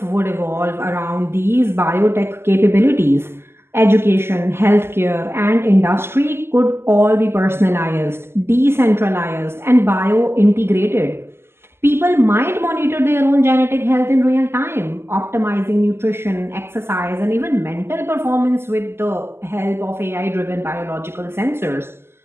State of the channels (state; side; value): late; left; 0.12 ms